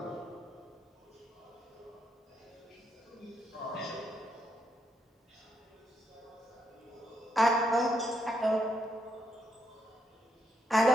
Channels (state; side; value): normal; both; correlation 0.78